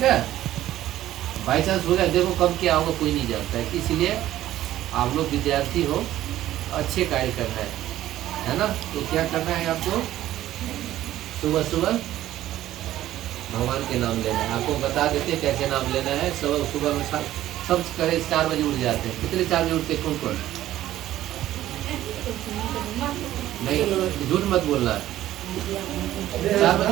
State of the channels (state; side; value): quieter; left; 13.6 dB